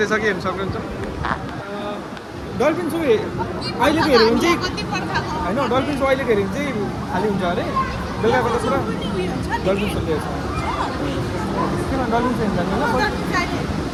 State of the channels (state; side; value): identical; both; correlation 1.00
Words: हेर्नु सक्नुहुन्छ. डल्फिन सो अहिलेको हेऱ्यो भने चाहिँ होइन. डल्फिन सो अहिलेको हेऱ्यो भने चाहिँ खाली हुन्छ अरे. बेलुकाको त पुरा डल्फिन सो लिएको छ. किन डल्फिन सो हेर्नु